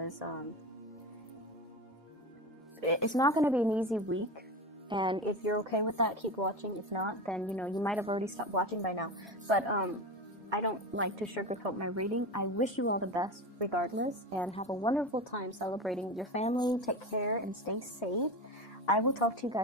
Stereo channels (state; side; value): normal; both; correlation 0.25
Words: it's not going to be an easy week. And if you're okay with that, keep watching. If not, then, you know, you might have already stopped watching by now. But I don't like to sugarcoat my reading. I wish you all the best regardless, and have a wonderful time celebrating with your family. Take care and stay safe. I will talk to you